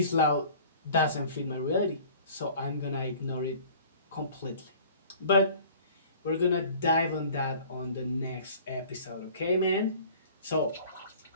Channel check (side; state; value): both; inverted; correlation -0.48